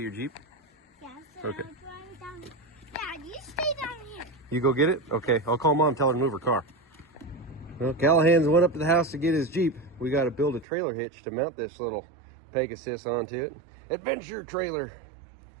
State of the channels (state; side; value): drops out; left; at 10.7 s